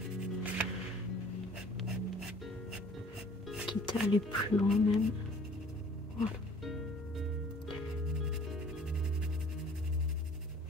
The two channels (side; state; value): both; normal; correlation 0.52